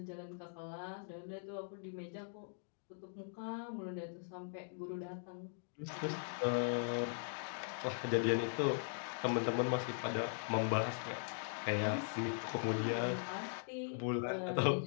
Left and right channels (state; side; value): silent; right; digital silence